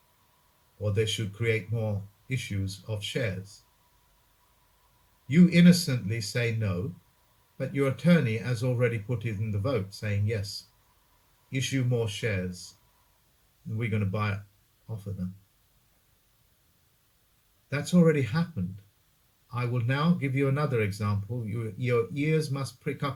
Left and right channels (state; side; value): identical; both; correlation 1.00